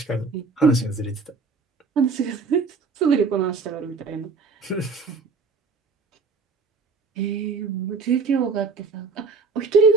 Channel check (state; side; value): quieter; left; 4.5 dB